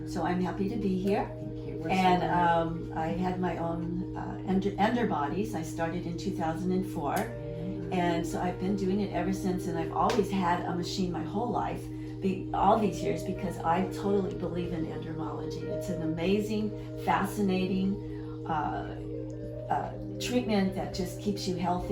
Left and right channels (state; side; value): identical; both; correlation 1.00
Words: So I'm happy to be here. And I had my own ender bodies. I started in 2004. And so I've been doing it ever since, and I've always had a machine my whole life, all these years, because I totally believe in endermology. It's an amazing, fascinating treatment that just keeps you